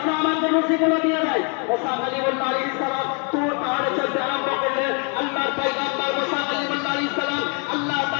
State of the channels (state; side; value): quieter; right; 36.7 dB